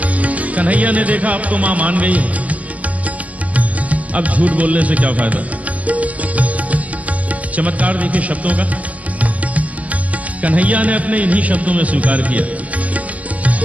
कन्हैया ने देखा अब तो मां मान गई है, अब झूठ बोलने से क्या फायदा। चमत्कार देखिए शब्दों का। कन्हैया ने अपने इन्हीं शब्दों में स्वीकार किया।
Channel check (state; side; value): late; left; 0.068 ms